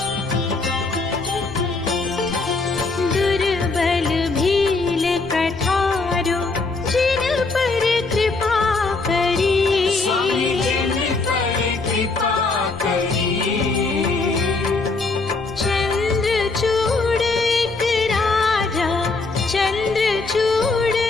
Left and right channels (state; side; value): quieter; right; 3.8 dB